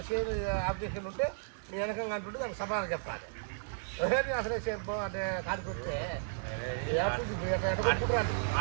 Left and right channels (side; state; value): left; silent; digital silence